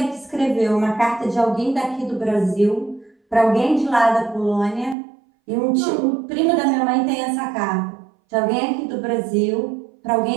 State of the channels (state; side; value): drops out; left; at 5.0 s